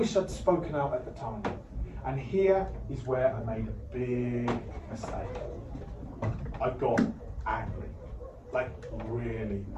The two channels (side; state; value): both; identical; correlation 1.00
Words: I'd spoken out at the time. And here is where I made a big mistake. I got angry, like really